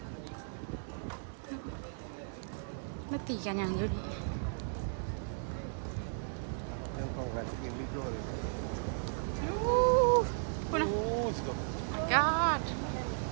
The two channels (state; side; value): silent; left; digital silence